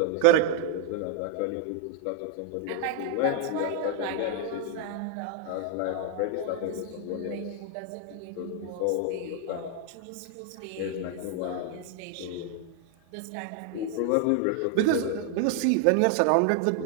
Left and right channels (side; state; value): both; different; correlation 0.00